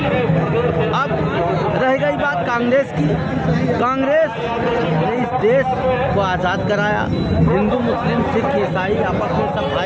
अब रह गई बात कांग्रेस की। कांग्रेस ने इस देश को आज़ाद कराया, हिंदू मुस्लिम सिख ईसाई आपस में सब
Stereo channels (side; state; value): both; identical; correlation 1.00